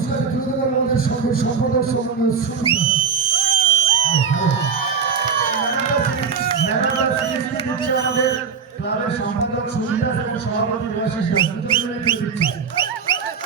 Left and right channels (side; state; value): left; quieter; 6.2 dB